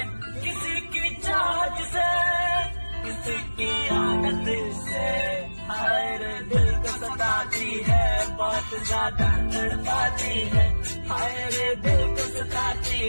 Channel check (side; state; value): both; inverted; correlation -1.00